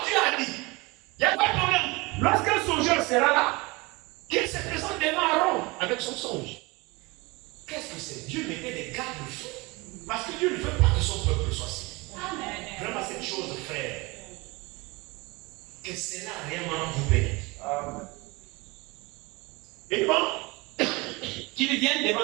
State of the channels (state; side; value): quieter; left; 24.7 dB